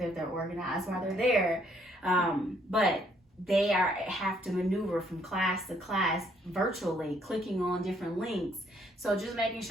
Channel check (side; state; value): both; normal; correlation 0.67